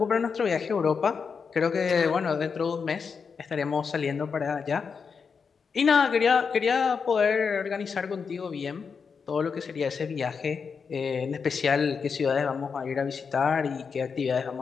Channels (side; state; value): right; quieter; 5.7 dB